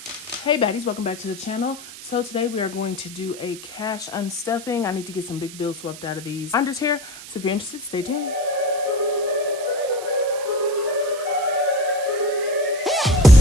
Hey baddies, welcome back to the channel. So today we are going to do a cash unstuffing. I need to get some big bills swept out of these binders here. So if you're interested, stay tuned.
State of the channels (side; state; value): right; noise; hiss, 14 dB below the sound